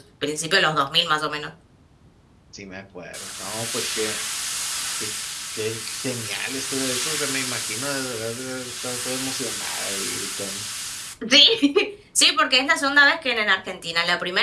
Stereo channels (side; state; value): both; identical; correlation 1.00